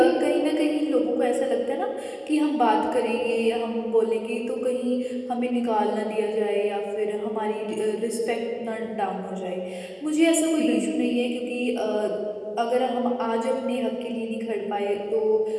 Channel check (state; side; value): identical; both; correlation 1.00